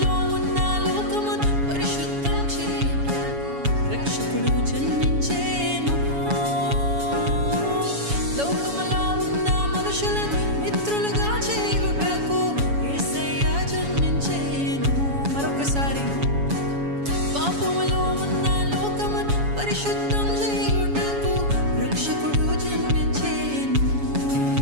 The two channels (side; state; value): left; late; 7.1 ms